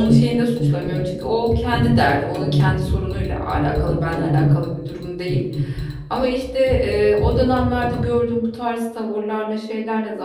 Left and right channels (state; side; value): identical; both; correlation 1.00